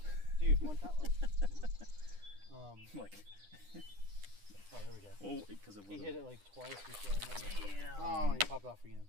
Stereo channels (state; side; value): late; left; 9.9 ms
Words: Dude, one time. Like, Oh, there we go. oh, because it was. He hit it like twice before I went. Damn. Oh, and he popped off again.